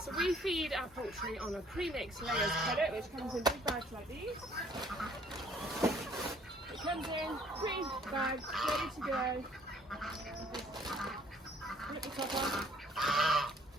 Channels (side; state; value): both; normal; correlation 0.60